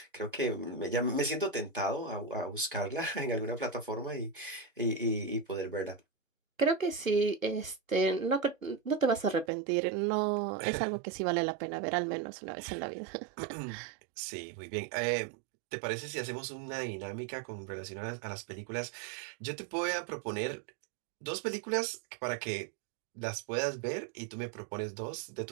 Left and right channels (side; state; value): left; drops out; at 9.5 s